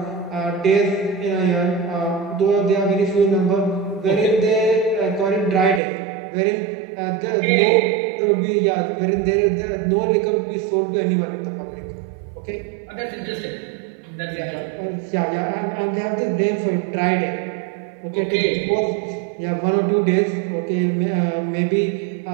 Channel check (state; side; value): drops out; left; at 5.8 s